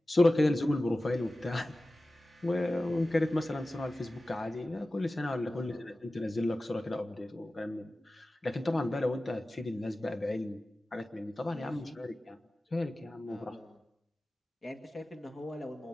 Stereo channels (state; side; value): normal; both; correlation 0.96